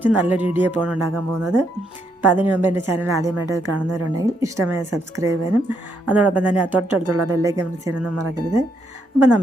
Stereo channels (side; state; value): both; normal; correlation 0.76